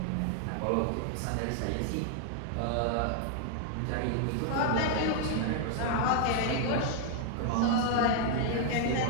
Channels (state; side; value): different; both; correlation 0.00